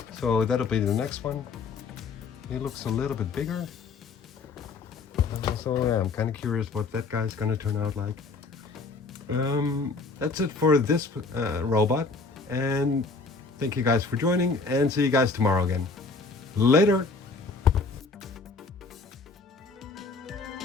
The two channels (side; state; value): right; quieter; 4.1 dB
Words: So that'll be the next one. He looks a little bit bigger. So yeah, I'm kind of curious what that guy's gonna turn out like. That's it for this robot. And thank you guys for joining, and see you guys tomorrow again. Later!